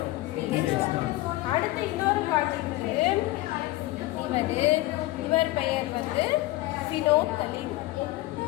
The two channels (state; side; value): quieter; right; 18.2 dB